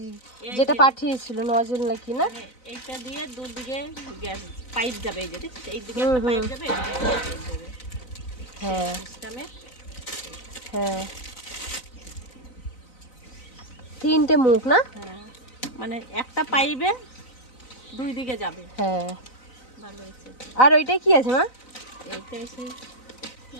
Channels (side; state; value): right; late; 4.0 ms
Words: যেটা পাঠিয়েছিল নজল নাকি না, এইটা দিয়ে দুদিকে গ্যাস পাইপ যাবে, এই যে এইদিকে একটা পাইপ যাবে, এইদিকে একটা পাইপ যাবে। হ্যাঁ সিস্টেমে হ্যাঁ, 3টে মুখ না? হ্যাঁ, মানে একটা পাইপে দুই দিকে যাবে। হ্যাঁ, ভালো হয়েছে। আর ওইটা কি আছে মা? এইটা এসে